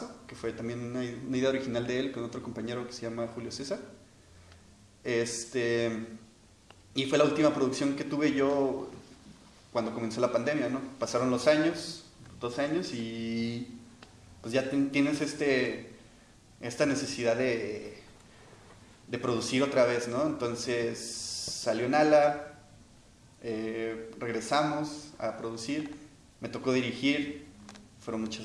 que fue también una idea original de él con otro compañero que se llama Julio César. Y fue la última producción que tuve yo cuando comenzó la pandemia, ¿no? Pasaron los años, 2 años, y pues ya tienes esta necesidad de producir otra vez, ¿no? Entonces salió Nala, regresamos a producir, me tocó dirigir, fueron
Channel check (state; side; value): identical; both; correlation 1.00